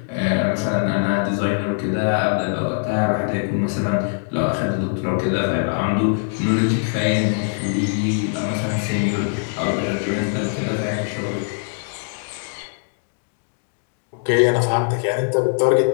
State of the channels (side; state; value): right; silent; digital silence